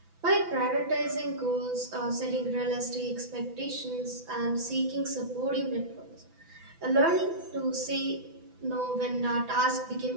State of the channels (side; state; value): left; late; 6.0 ms